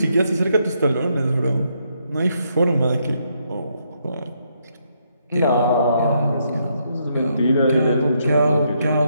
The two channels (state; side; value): inverted; both; correlation -0.76